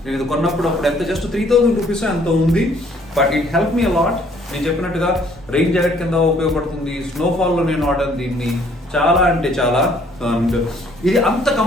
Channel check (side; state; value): both; normal; correlation 0.62